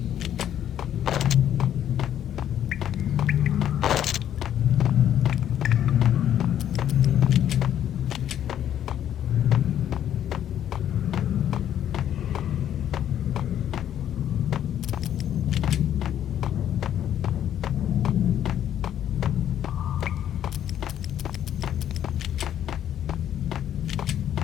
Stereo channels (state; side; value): quieter; right; 10.5 dB